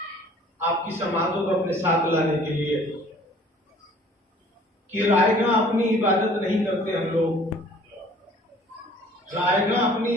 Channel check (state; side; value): normal; both; correlation 0.53